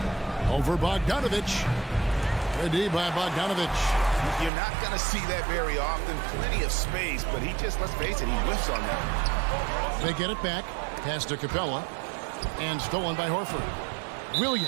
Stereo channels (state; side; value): drops out; left; at 4.5 s